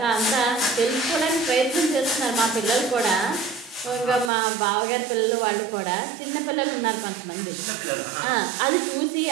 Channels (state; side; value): drops out; left; at 4.3 s